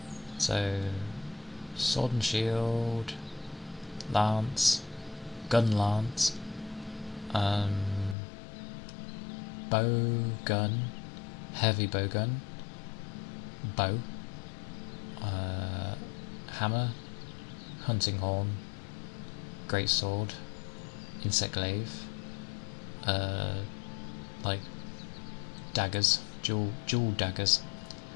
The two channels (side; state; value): right; drops out; at 8.2 s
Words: So, sword and shield, lance, gun lance, bow gun, heavy bow gun, bow, hammer, hunting horn, great sword, insect glaive, like daggers, dual daggers,